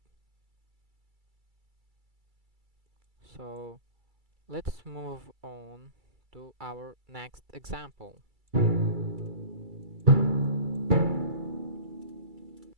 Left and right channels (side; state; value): left; late; 2.3 ms